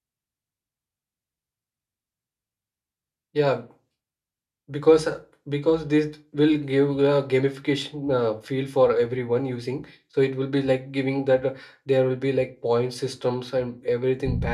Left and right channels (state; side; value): identical; both; correlation 1.00